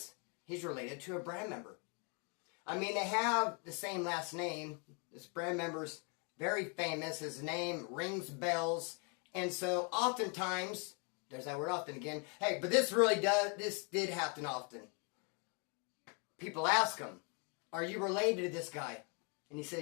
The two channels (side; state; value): right; quieter; 36.0 dB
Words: he's related to a brand member. I mean, they have the same last name. This brand member's very famous. His name rings bells. And so oftentimes, there's that word often again. Hey, but this did happen often. People ask him, are you related to this guy? And he